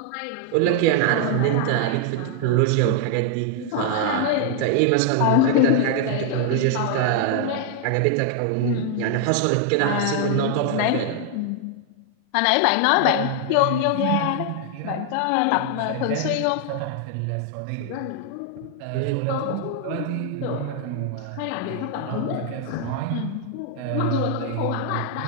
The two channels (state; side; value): different; both; correlation 0.00